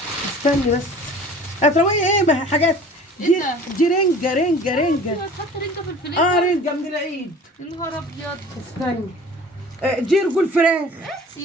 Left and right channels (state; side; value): normal; both; correlation 0.45